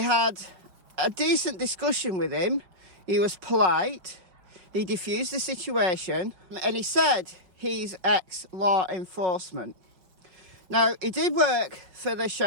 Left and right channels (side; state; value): left; late; 5.4 ms